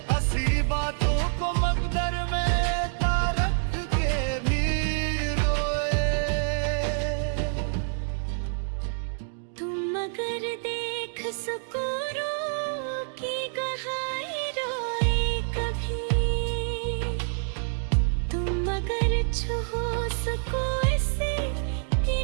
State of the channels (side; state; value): left; silent; digital silence